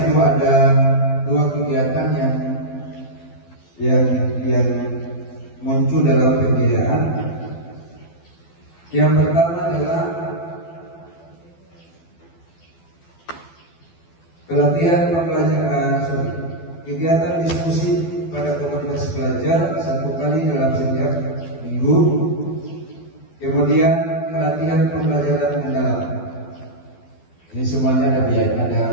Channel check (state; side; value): late; right; 12 ms